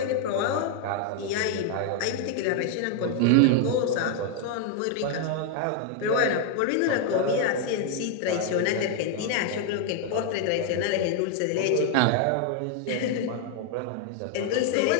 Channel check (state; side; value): different; both; correlation 0.00